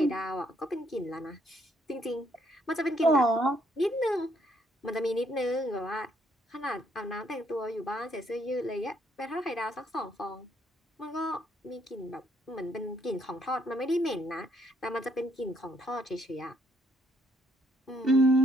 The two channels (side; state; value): both; normal; correlation 0.70